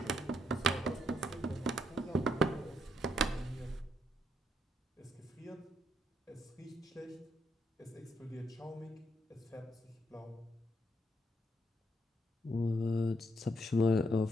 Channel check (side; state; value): both; normal; correlation 0.75